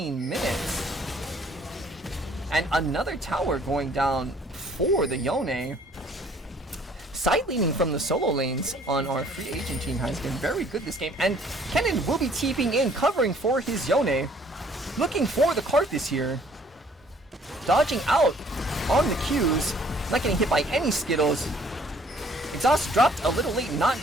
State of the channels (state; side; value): normal; both; correlation 0.58